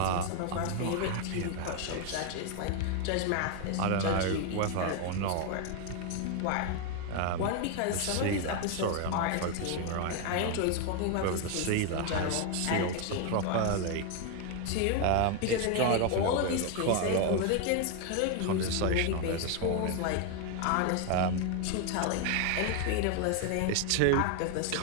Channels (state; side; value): different; both; correlation 0.01